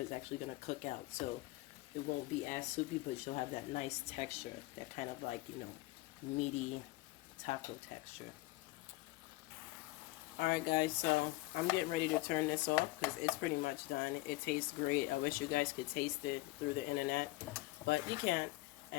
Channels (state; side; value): quieter; right; 20.1 dB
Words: actually going to cook out, so it won't be as soupy, but you'll have that nice texture, that kind of like, you know, meaty taco texture. Alright guys, so I'm getting ready to turn this off because it's pretty much done. It tastes great. I wish you guys could taste it through the internet, but you can't,